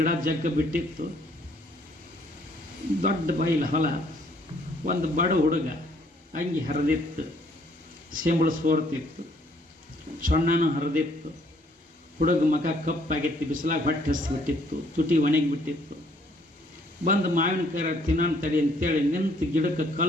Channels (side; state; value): both; normal; correlation 0.65